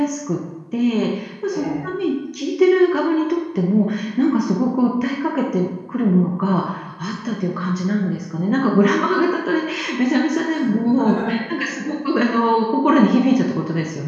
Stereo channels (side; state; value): both; identical; correlation 1.00